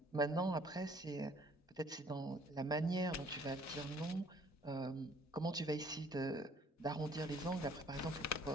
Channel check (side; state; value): both; normal; correlation 0.58